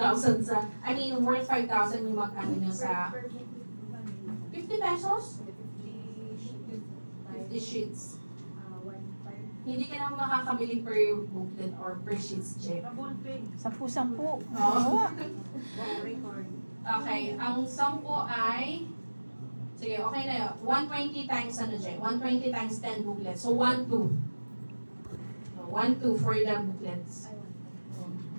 sa, worth 5,000 yung mag-ano nyo sa 50 pesos? 50 sheets. Hindi ka na makakabili per booklet or per sheets, Jeff. 10-10. Oh. Okay, ang 10 ay, sige, okay na yun. 120 times ano, Jeff? 120 times 10 booklets. So, 1-2. 1-2 for the booklets.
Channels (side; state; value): both; inverted; correlation -1.00